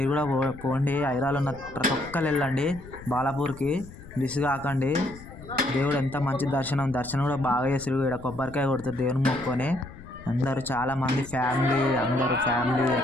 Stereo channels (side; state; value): left; noise; rumble, 17 dB below the sound